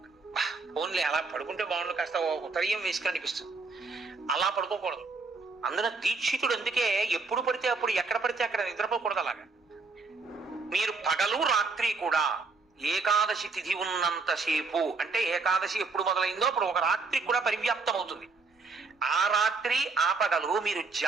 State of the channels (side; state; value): left; quieter; 4.1 dB